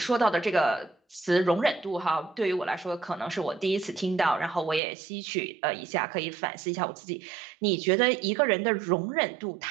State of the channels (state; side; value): drops out; left; at 4.8 s